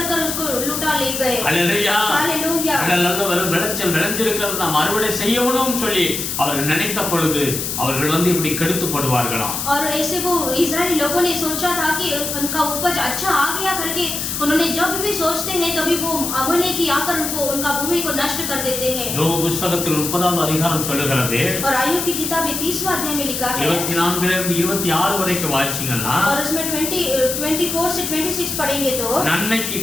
उसको लुटा ले गए. அல்லேலூயா. हालेलुया. நல்ல விளைச்சல் விளைஞ்சிருக்கிறது நாம் அறுவடை செய்யணும்னு சொல்லி அவர்கள் நினைத்த பொழுது அவர்கள் வந்து இப்படி கெடுத்து போடுவார்களாம். और ऐसे वो इजरायली लोगों ने सोचा था कि उनका उपज अच्छा आ गया करके उन्होंने जब भी सोचते हैं तभी वो अमेलेक आकर उनको उनका भूमि को नष्ट कर देते हैं. யோபு புத்தகத்தில் 30வது அதிகாரம் சொல்லுகிறது. और आयub की किताब में 30वां अध्याय में लिखा है 24 இருந்து 26 வரைக்கும் வாசிச்சீங்கன்னா और उसमें 24 से 26 पढ़ेंगे तो நன்மைக்கு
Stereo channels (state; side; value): noise; left; hiss, 3 dB below the sound